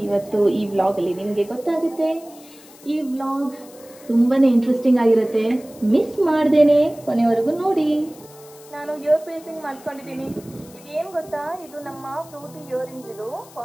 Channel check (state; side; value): noise; left; hiss, 22 dB below the sound